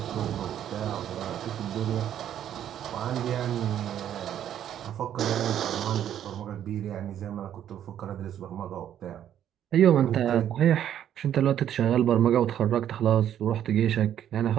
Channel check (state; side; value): quieter; left; 10.4 dB